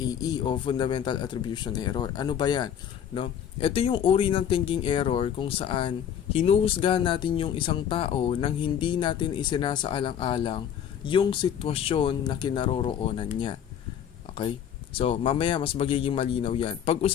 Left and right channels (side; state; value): right; quieter; 9.1 dB